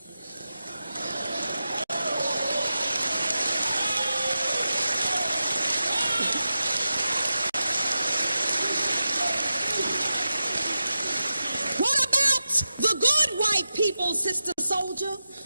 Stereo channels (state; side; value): inverted; both; correlation -0.91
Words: What about the good white people, Sister Souljah?